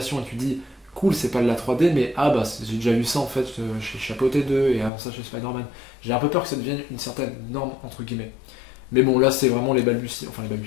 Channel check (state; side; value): drops out; right; at 4.9 s